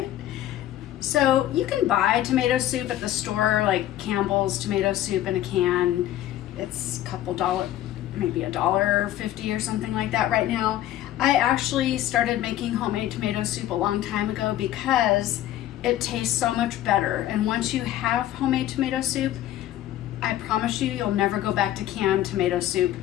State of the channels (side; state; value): right; quieter; 13.2 dB